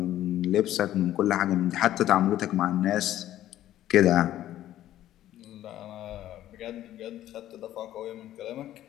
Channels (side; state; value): right; quieter; 13.0 dB